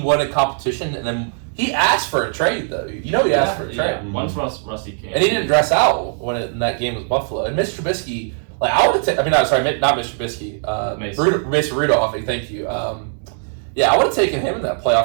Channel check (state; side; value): silent; left; 66 dB below the other